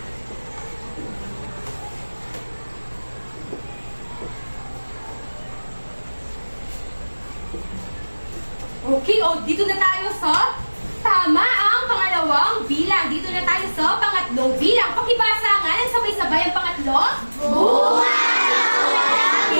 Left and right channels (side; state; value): both; inverted; correlation -1.00